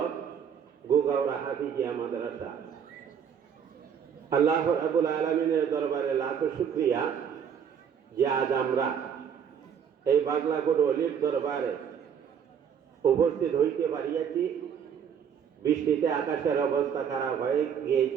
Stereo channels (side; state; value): left; quieter; 7.8 dB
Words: গুগাউড়া হাফিজিয়া মাদ্রাসা আল্লাহ রাব্বুল আলামিনের দরবারে লাখো শুকরিয়া যে আজ আমরা এই বাগলাকোট অলির দরবারে উপস্থিত হইতে পারিয়াছি। বৃষ্টিতে আকাশের অবস্থা খারাপ হয়ে